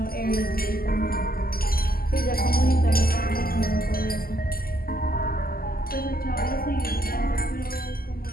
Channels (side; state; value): right; late; 0.42 ms